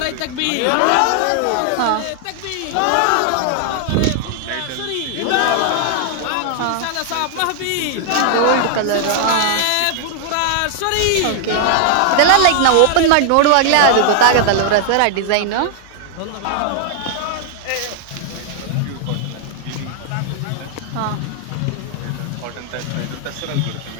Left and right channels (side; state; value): both; different; correlation 0.00